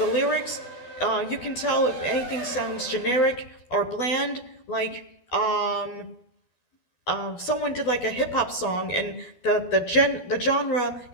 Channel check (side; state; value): right; late; 12 ms